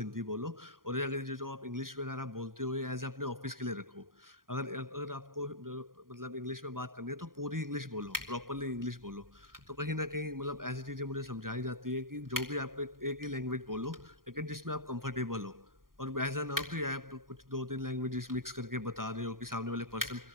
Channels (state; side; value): late; left; 0.91 ms